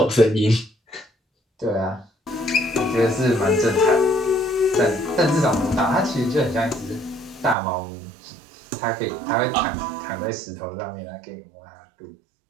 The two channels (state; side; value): drops out; left; at 7.6 s